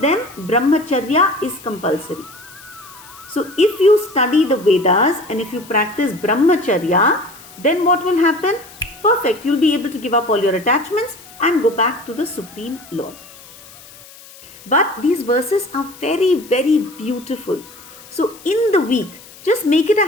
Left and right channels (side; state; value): left; noise; hiss, 21 dB below the sound